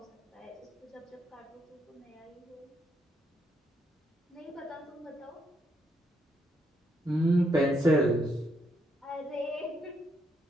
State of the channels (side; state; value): both; normal; correlation 0.76